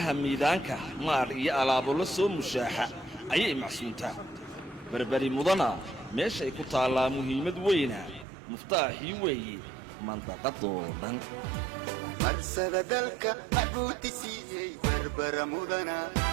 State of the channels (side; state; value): left; drops out; at 8.2 s